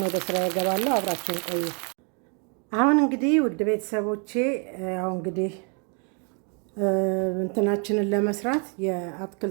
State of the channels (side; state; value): left; quieter; 37.9 dB